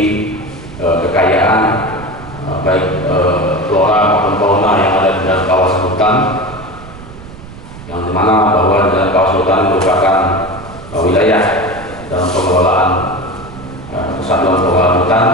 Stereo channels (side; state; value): right; noise; rumble, 16 dB below the sound